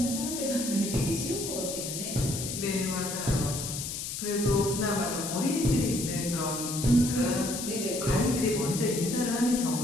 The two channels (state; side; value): noise; left; hiss, 5 dB below the sound